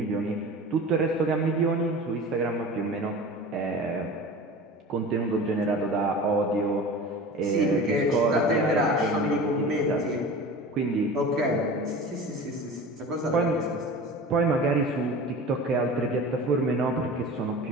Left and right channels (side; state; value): both; normal; correlation 0.36